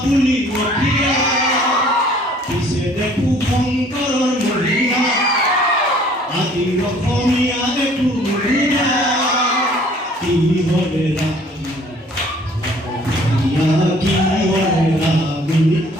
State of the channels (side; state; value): both; normal; correlation 0.55